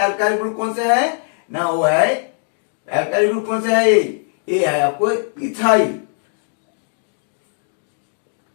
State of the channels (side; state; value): right; silent; 66 dB below the other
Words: एल्काइल ग्रुप कौन सा है ना, वो है एल्काइल ग्रुप कौन सा है, ये है आपको इथाइल।